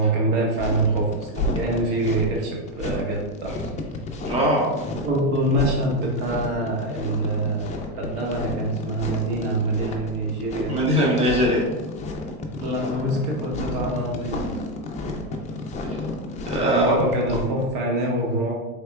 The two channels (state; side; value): normal; both; correlation 0.08